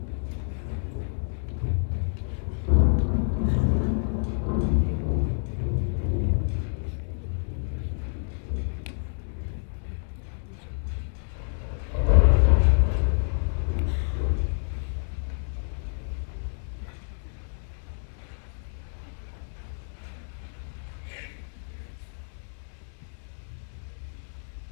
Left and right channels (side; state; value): right; silent; digital silence